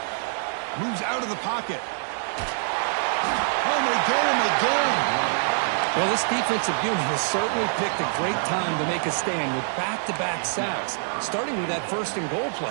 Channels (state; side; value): silent; left; digital silence